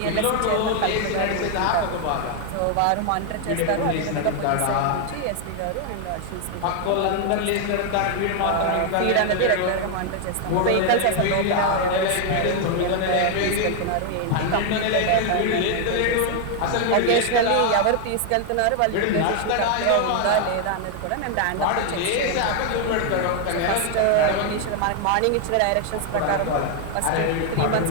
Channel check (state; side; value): different; both; correlation 0.00